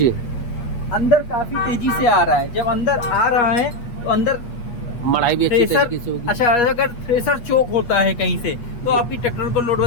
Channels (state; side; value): late; right; 8.4 ms